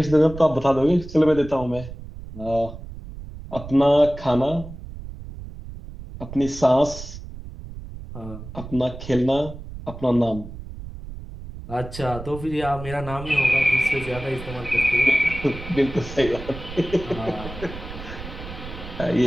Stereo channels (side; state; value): right; noise; rumble, 12 dB below the sound